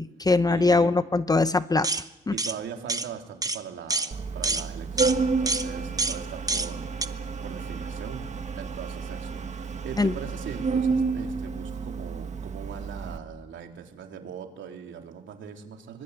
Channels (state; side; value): normal; both; correlation 0.59